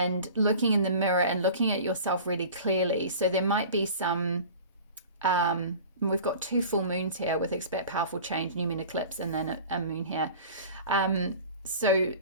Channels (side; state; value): both; inverted; correlation -0.40